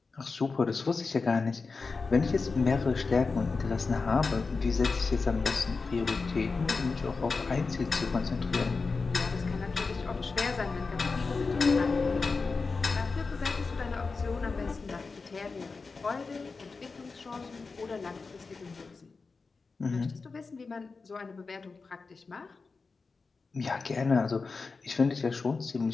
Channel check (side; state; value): right; quieter; 4.3 dB